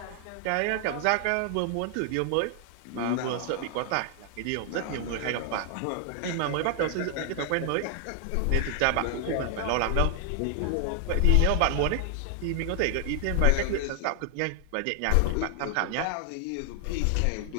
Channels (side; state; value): both; different; correlation 0.00